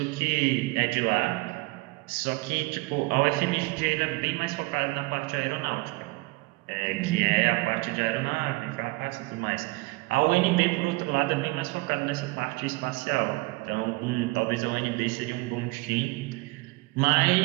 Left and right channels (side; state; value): left; quieter; 23.6 dB